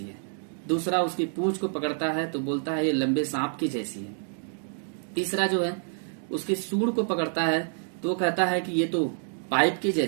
है। दूसरा उसकी पूंछ को पकड़ता है तो बोलता है ये लंबे सांप की जैसी है। तीसरा जो है उसके सूंड को पकड़ता है तो वो कहता है कि ये तो पाइप की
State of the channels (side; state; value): left; silent; 60 dB below the other